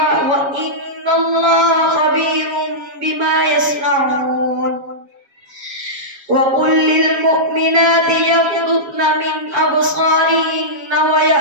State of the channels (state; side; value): late; left; 7.3 ms